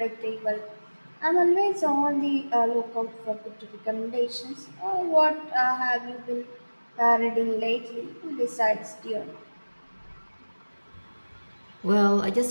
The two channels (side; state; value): both; inverted; correlation -1.00